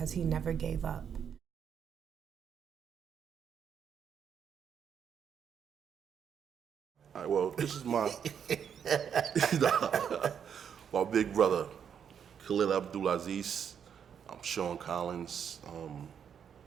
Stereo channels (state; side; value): quieter; left; 7.9 dB